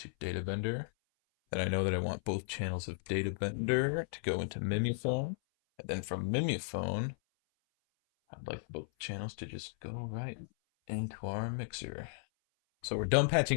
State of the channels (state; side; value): silent; right; 54 dB below the other